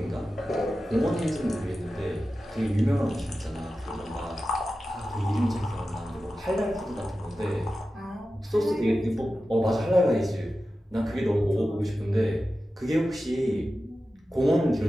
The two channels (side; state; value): both; normal; correlation 0.93